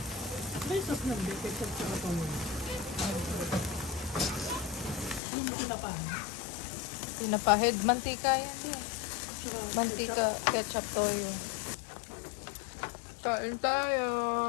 May sos lang, di. Ketchup sa kapang. Yung tinapan. Pinapahid, mantika yan. Mantika, ketchup, toyo. Kain tayo.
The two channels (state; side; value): drops out; right; at 5.2 s